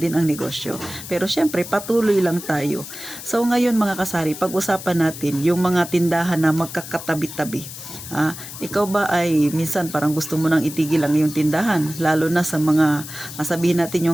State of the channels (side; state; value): left; noise; hiss, 12 dB below the sound